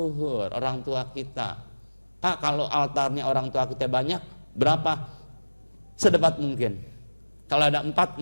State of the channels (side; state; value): both; inverted; correlation -1.00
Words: orang tua kita. Pak, kalau altarnya orang tua kita banyak, berapa? Sedebat mungkin. Kalau ada